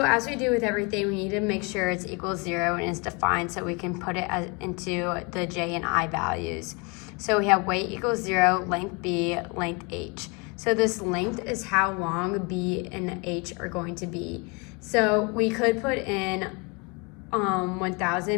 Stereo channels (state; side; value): quieter; right; 30.3 dB